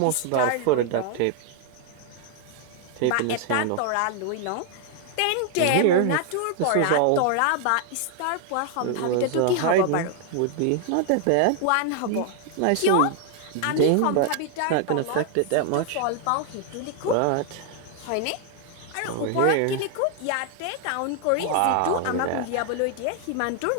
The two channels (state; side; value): different; both; correlation 0.00